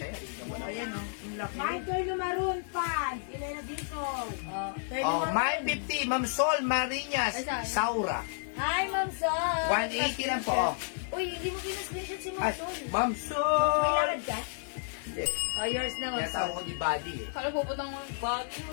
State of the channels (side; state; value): right; silent; 57 dB below the other